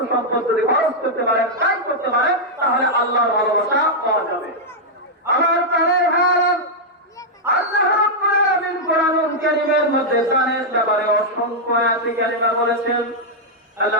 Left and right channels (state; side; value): normal; both; correlation -0.04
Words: সম্পদ যদি খরচ করতে পারেন, ব্যয় করতে পারেন, তাহলে আল্লাহর ভালোবাসা পাওয়া যাবে। আমার প্রাণের ভাইরা, আল্লাহ রাব্বুল আলামিন কোরআনুল কারীমের মধ্যে দানের ব্যাপারে অসংখ্য আয়াতে কারিমা বলেছেন।